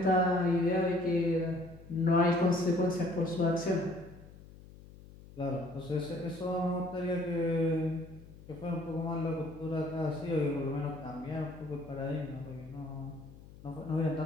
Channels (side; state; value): left; noise; hum, 19 dB below the sound